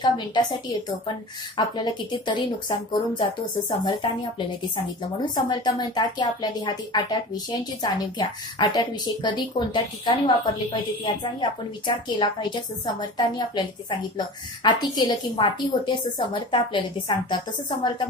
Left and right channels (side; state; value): both; normal; correlation 0.36